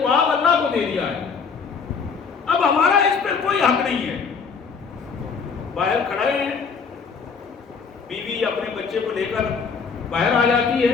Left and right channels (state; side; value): quieter; right; 5.6 dB